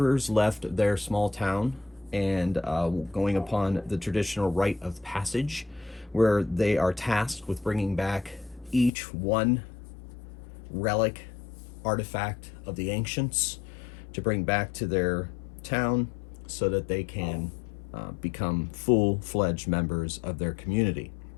left their small town and going upon the traditional rite of passage, where they are tasked with bringing back each one relic artifact of the ancients to bring back to their town so that they can become full-fledged members of their community.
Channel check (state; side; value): drops out; right; at 8.9 s